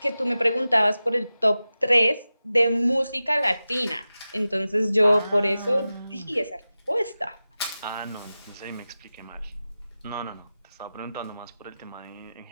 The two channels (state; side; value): inverted; both; correlation -0.94